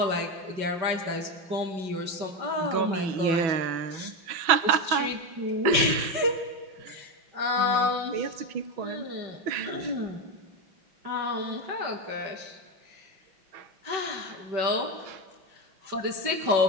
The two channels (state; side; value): late; left; 5.3 ms